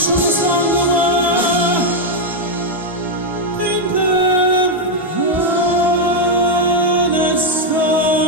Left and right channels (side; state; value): both; normal; correlation 0.01